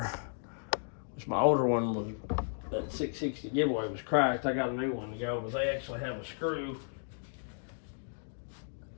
which my older one was, that 660 giveaway was cracked. I got a new one to go, but they actually have a screw.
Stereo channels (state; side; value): silent; right; digital silence